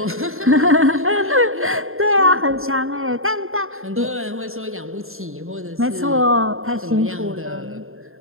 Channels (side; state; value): left; late; 0.61 ms